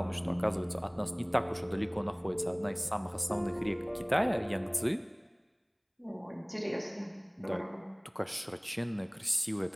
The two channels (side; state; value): both; identical; correlation 1.00